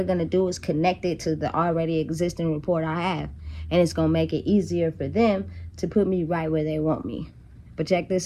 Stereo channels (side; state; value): both; identical; correlation 1.00